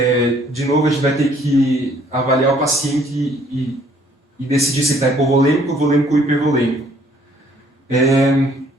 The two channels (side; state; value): both; normal; correlation 0.61